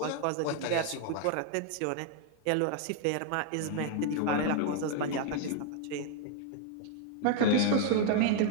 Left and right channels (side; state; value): both; different; correlation 0.00